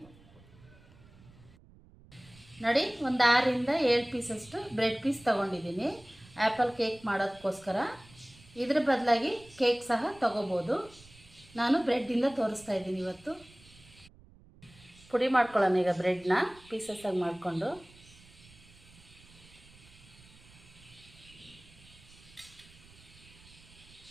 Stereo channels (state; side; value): noise; right; rumble, 24 dB below the sound